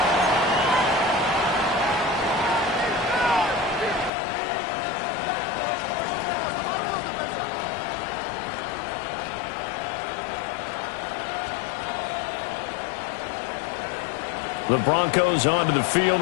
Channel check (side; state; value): right; drops out; at 4.1 s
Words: The Broncos onto the field,